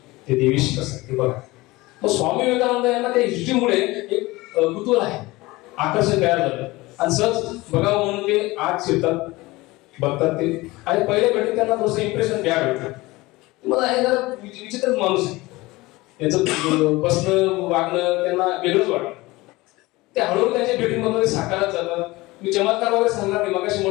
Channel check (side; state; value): right; quieter; 20.9 dB